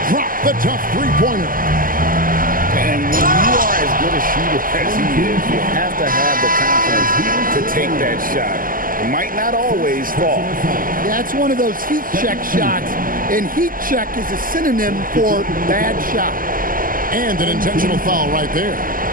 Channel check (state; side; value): late; left; 0.41 ms